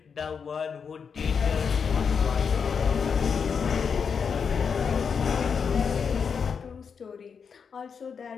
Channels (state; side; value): quieter; right; 6.3 dB